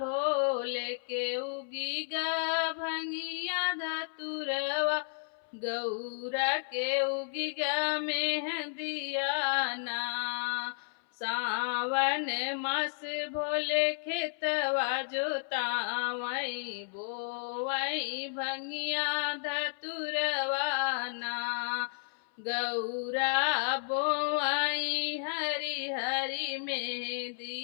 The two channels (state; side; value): silent; right; 56 dB below the other